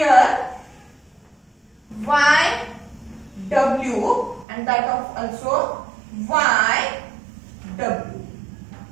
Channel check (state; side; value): drops out; left; at 4.5 s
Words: y w and that of also y w.